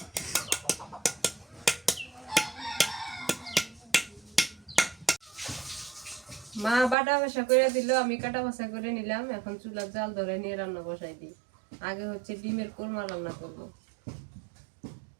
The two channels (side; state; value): left; drops out; at 7.0 s